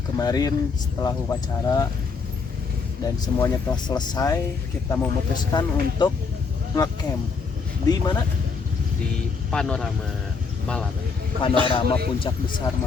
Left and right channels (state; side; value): quieter; right; 5.0 dB